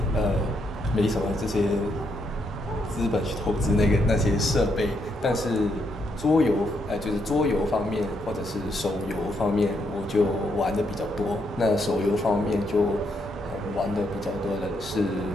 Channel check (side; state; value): both; normal; correlation 0.77